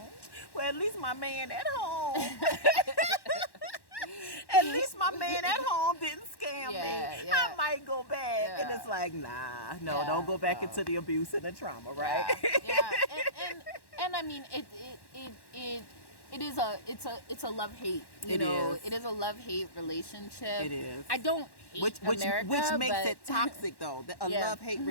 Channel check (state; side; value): late; right; 1.1 ms